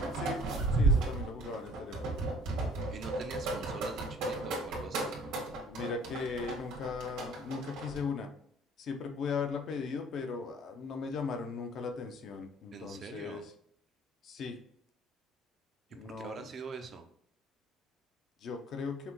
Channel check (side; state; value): both; normal; correlation 0.53